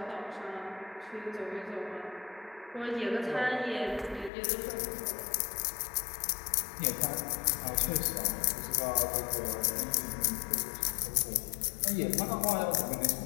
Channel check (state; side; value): drops out; right; at 4.3 s